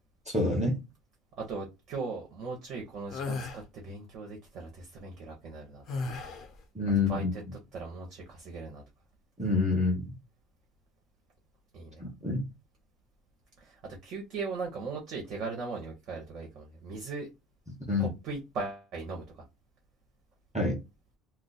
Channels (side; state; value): both; normal; correlation 0.39